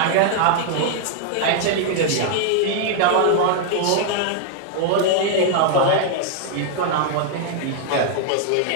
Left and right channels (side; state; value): both; different; correlation 0.00